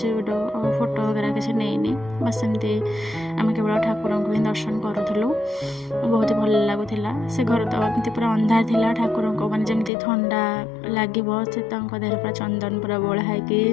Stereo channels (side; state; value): right; drops out; at 9.9 s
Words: वीडियो फोटो वगैरह किसी नहीं बस सेमती आम केवल ठाकुर को ही दर्शन करूँ। बहुत ही भल लगुला। से घर तो एमती पूरा अंधार था। ठाकुर को मैंने जमी ठंडा लगे से देह पूरा चंदन पूरा बोला